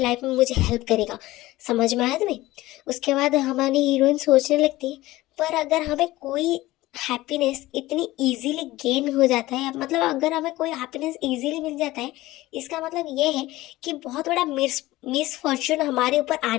में मुझे हेल्प करेगा। समझ में आया तुम्हें? उसके बाद हमारी हीरोइन सोचने लगती है, पर अगर हमें कोई हैप्पीनेस इतनी इजीली गेन हो जाता है, मतलब अगर हमें कोई हैप्पीनेस इजीली मिल जाता है, इसका मतलब ये है कि बहुत बड़ा मिस फॉर्चून हमारे ऊपर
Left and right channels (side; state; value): right; quieter; 17.8 dB